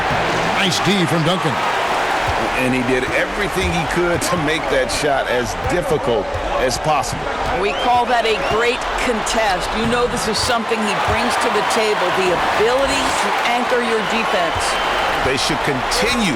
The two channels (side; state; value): both; identical; correlation 1.00